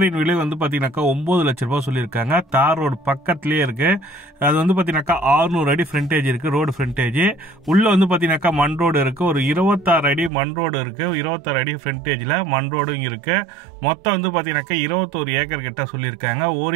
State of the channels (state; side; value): drops out; left; at 10.3 s